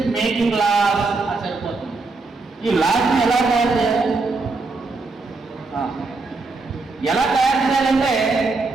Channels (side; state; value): left; quieter; 3.7 dB